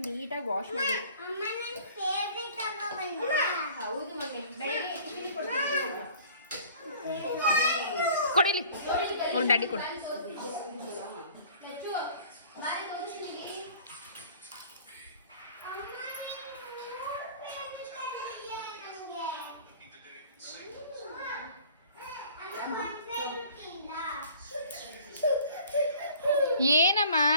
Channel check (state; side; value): inverted; both; correlation -0.49